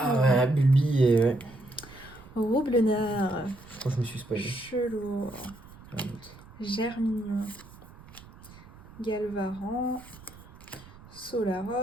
ouais, Bulbi et... Ouais. Roublenard. Je crois que je me suis spoilé. Chelour. Germignon. Galvaran.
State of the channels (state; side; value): noise; right; rumble, 20 dB below the sound